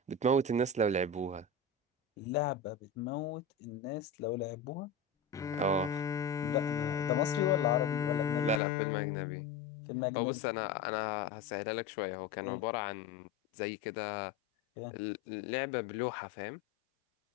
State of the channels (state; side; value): drops out; right; at 8.6 s